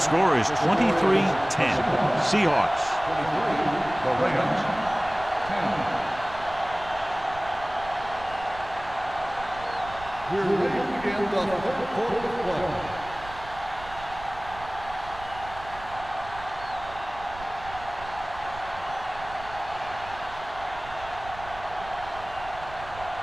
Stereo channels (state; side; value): noise; right; rumble, 16 dB below the sound